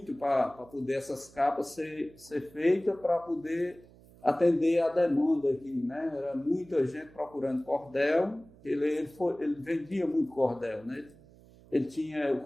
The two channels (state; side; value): noise; right; hum, 24 dB below the sound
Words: para poder essas capas ser feitas para poder atender a demanda aqui, né? Era muita gente procurando cordel. Ele vendia muito cordel, né? O